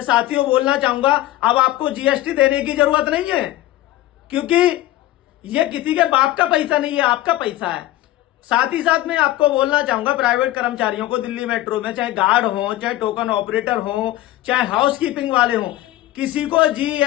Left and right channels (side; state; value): right; quieter; 15.3 dB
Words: साथियों बोलना चाहूंगा, अब आपको जीएसटी देने की जरूरत नहीं है, क्योंकि ये किसी के बाप का पैसा नहीं है, आपका पैसा है। साथ ही साथ मैं आपको बोलना चाहूंगा, प्राइवेट कर्मचारियों को दिल्ली मेट्रो में, चाहे गार्ड हो, चाहे टोकन ऑपरेटर हो, चाहे हाउसकीपिंग वाले हो, किसी को